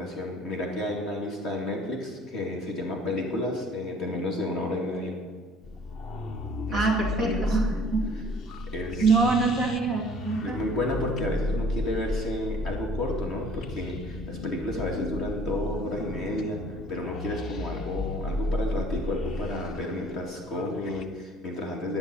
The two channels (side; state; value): both; normal; correlation 0.54